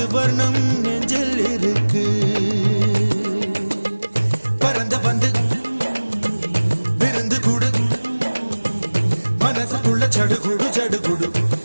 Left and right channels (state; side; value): inverted; both; correlation -1.00